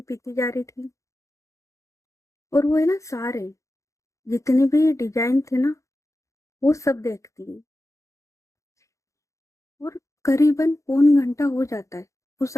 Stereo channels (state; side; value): late; right; 0.15 ms